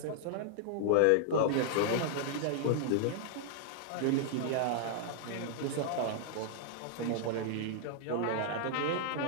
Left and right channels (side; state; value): both; different; correlation -0.01